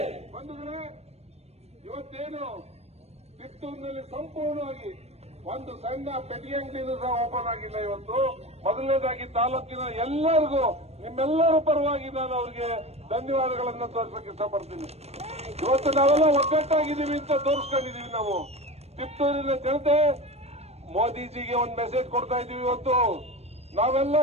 ಇವತ್ತೇನು ಕಿತ್ತೂರಿನಲ್ಲಿ ಸಂಪೂರ್ಣವಾಗಿ ಒಂದು ಸಣ್ಣ ಪೆಟ್ಟಿಗೆ ಅಂಗಡಿನೂ ಸಹ ಓಪನ್ ಆಗಿಲ್ಲ. ಇವತ್ತು ಮೊದಲನೇದಾಗಿ ತಾಲೂಕಿನ ಎಲ್ಲರಿಗೂ ನಿಮ್ಮೆಲ್ಲರ ಪರವಾಗಿ ನಾನು ಅವರಿಗೆ ಧನ್ಯವಾದಗಳನ್ನು ತೋರಿಸಕ್ಕೆ ಇಷ್ಟಪಡ್ತೀನಿ. ಇವತ್ತು ನಾವೆಲ್ಲ ಒಗ್ಗಟ್ಟಾಗಿದ್ದೀವಿ ಅಂತ ತೋರಿಸ್ಕೊಂಡಿದೀವಿ. ನಾವು ಕಿತ್ತೂರಿನ ಜನತೆ ಮೋದಿಜಿಗೆ ಒಂದು ಮೆಸೇಜ್ ಕೊಡ್ತಾ ಇದೀವಿ. ಇವತ್ತು ನಾವೆಲ್ಲ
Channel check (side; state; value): left; late; 0.31 ms